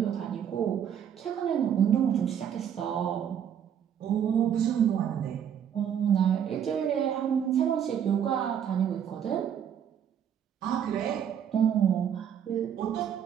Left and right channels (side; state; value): left; quieter; 8.8 dB